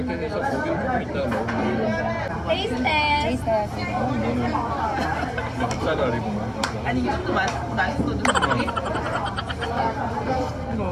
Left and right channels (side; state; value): both; identical; correlation 1.00